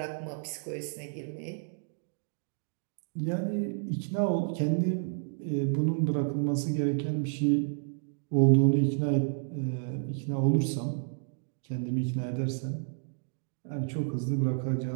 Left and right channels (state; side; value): silent; left; digital silence